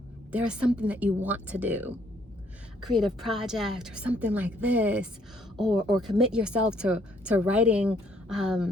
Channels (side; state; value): both; normal; correlation 0.67